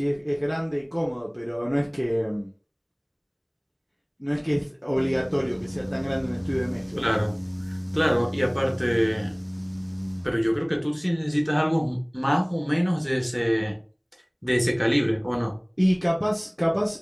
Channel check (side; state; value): both; identical; correlation 1.00